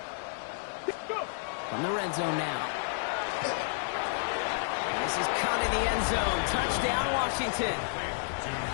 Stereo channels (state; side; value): silent; right; digital silence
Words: From the red zone now. And this is caught in the end zone. Touchdown, Washington.